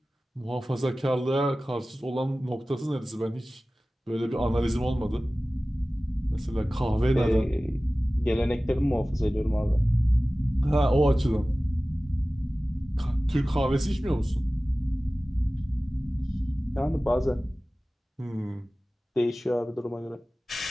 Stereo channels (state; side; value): normal; both; correlation 0.97